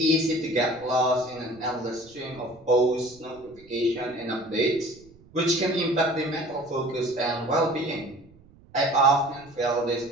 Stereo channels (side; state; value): right; noise; rumble, 26 dB below the sound